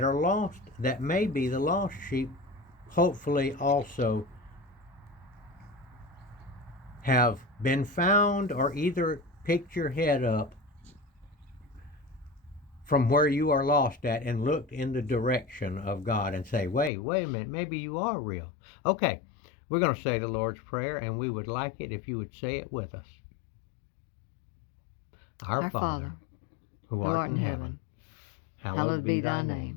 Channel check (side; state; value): right; drops out; at 16.9 s